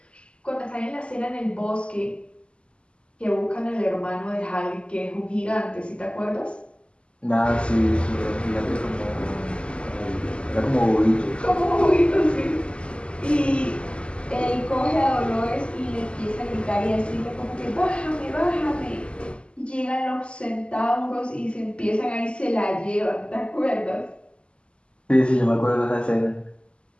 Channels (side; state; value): right; late; 0.053 ms